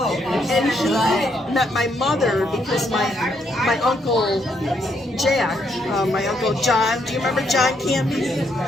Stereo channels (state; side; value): normal; both; correlation 0.74